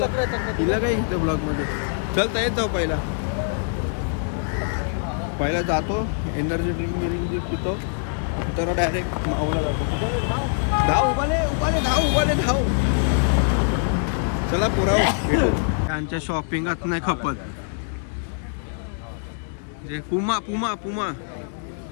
हिला काय घेतं ब्लॉग मध्ये. चलता येत जाऊ. पहिला जातो एनर्जी ड्रिंक पितो. तर डायरेक्ट माऊला जातो. धाव धाव. चला पुराव त्यांच्या शॉपिंगात नाही खपत. जे पुमा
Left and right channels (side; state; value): right; silent; digital silence